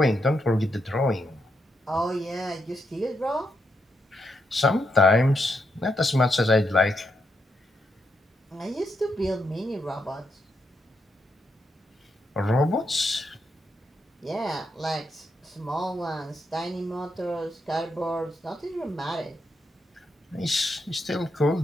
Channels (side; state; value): both; normal; correlation 0.81